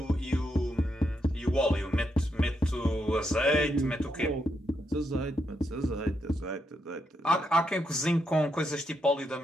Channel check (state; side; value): normal; both; correlation 0.81